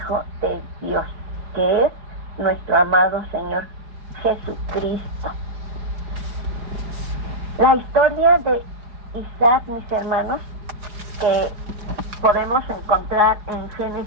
de Dios, que es nuestro amado Señor Jesucristo. La historia de Isaac, mis hermanos, que podemos encontrar en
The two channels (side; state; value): left; late; 4.9 ms